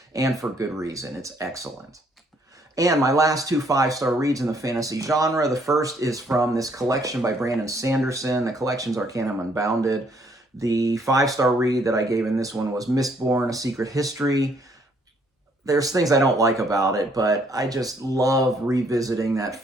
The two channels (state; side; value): normal; both; correlation 0.67